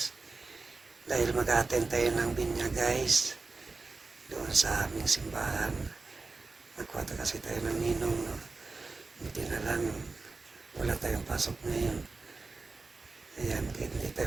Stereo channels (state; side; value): quieter; left; 3.8 dB